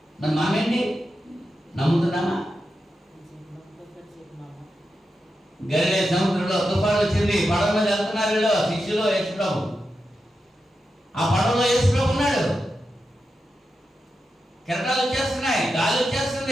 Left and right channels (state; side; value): normal; both; correlation 0.89